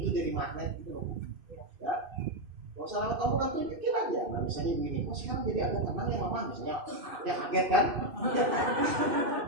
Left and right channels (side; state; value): left; late; 2.6 ms